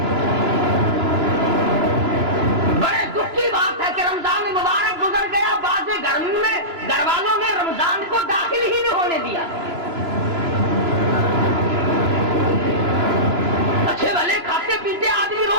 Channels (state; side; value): late; left; 3.0 ms